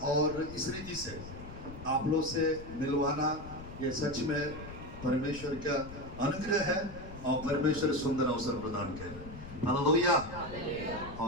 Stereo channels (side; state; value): left; noise; rumble, 13 dB below the sound